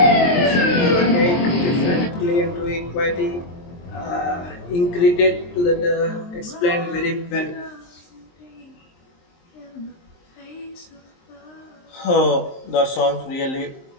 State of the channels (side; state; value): right; late; 23 ms